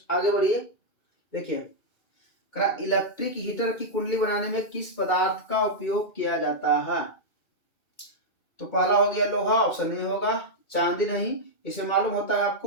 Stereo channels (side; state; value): right; late; 2.3 ms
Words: आगे बढ़िए, देखिए इलेक्ट्रिक हीटर की कुंडली बनाने में किस पदार्थ का उपयोग किया जाता है? तो पहला हो गया लोहा, ऑप्शन नहीं होगा, चांदी नहीं, इसे मालूम होता है